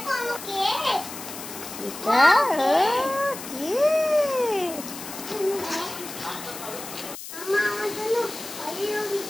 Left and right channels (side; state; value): left; noise; hiss, 11 dB below the sound